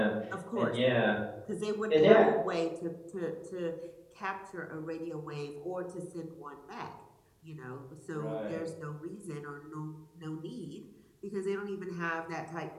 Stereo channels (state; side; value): identical; both; correlation 1.00